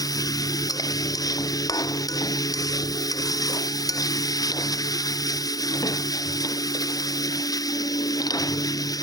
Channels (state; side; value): late; right; 0.18 ms